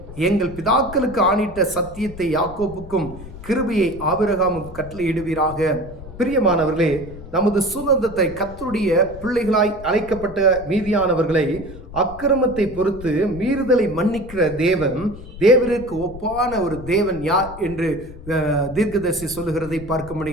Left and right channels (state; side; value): noise; left; rumble, 15 dB below the sound